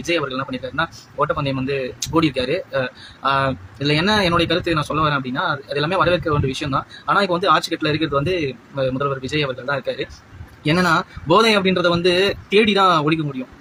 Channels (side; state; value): both; identical; correlation 1.00